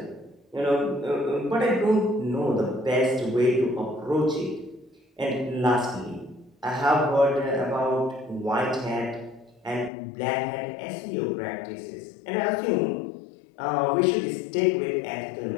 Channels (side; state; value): right; drops out; at 9.9 s